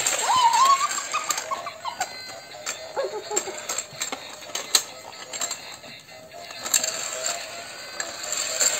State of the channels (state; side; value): identical; both; correlation 1.00